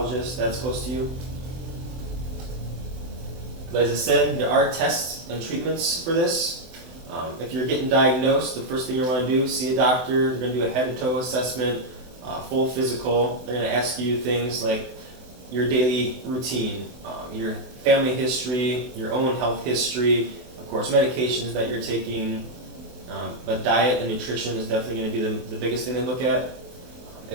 that's close to you. But as I said, there are tests and treatments for this. If you're getting diagnosed, the first thing you want to do is see a doctor. They're going to do a head-to-toe assessment, full physical. They're going to ask you things like your daily routine, your family history, your own health history, of course, medications that you're taking. But diet and nutrition is definitely going to be the biggest thing they look at.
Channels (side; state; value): left; late; 24 ms